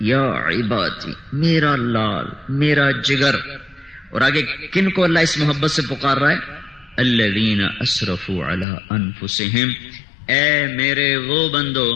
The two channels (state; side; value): drops out; right; at 8.7 s